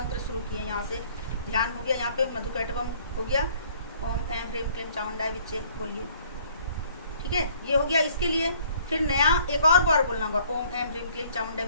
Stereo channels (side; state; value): both; inverted; correlation -0.59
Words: शुरू किए, यहाँ से ध्यान हो गया, यहाँ पे मधुकैटवम हो गया, ओम ऐम ह्रीम क्लीम चामुंडाय विच्चे बोलिए, ठीक है, ये हो गया। इसके लिए फिर नया एक और बार बोलना होगा, ओम ऐम ह्रीम क्लीम चामुंडाय